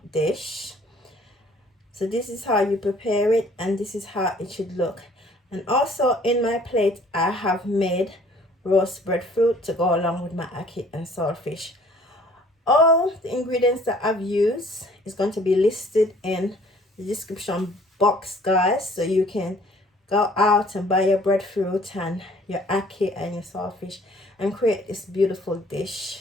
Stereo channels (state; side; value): normal; both; correlation 0.56